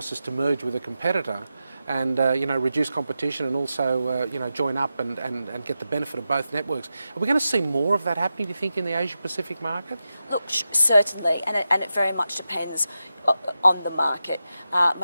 is to merge with a competitor and reduce competition and also join up and get the benefit of both networks. Are we going to see more of that happening, do you think, in the Asia-Pacific market? Look, certainly, and it very much depends on the market.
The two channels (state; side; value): inverted; both; correlation -0.91